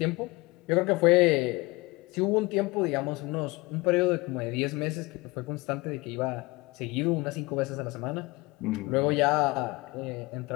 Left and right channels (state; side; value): quieter; right; 23.6 dB